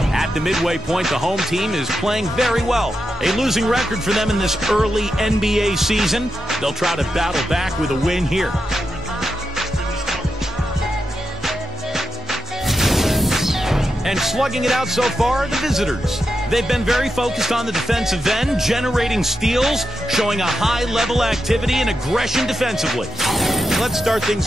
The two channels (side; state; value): both; normal; correlation 0.87